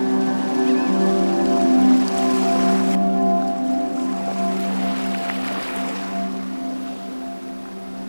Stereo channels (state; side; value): inverted; both; correlation -1.00